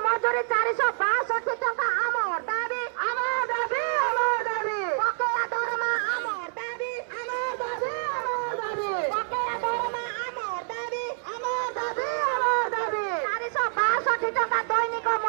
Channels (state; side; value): silent; left; digital silence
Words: मजुरी 462 टंका आमर दाबी आमर दाबी आमर दाबी बकेया दरमा आमर दाबी आमर दाबी आमर दाबी बकेया दरमा आमर दाबी आमर दाबी आमर दाबी 462 टंका दैनिक